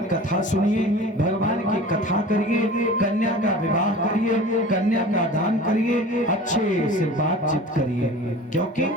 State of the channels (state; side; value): normal; both; correlation 0.40